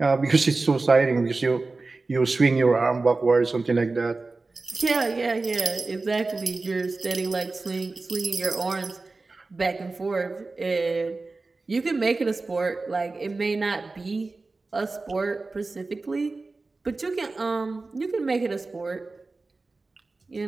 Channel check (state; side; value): quieter; left; 3.6 dB